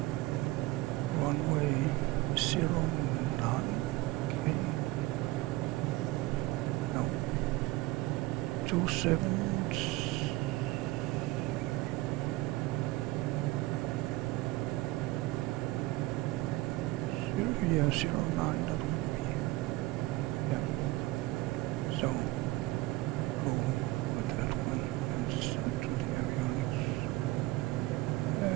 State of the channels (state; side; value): quieter; left; 19.8 dB